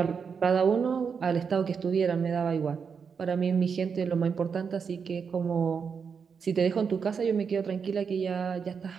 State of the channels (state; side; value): quieter; left; 6.1 dB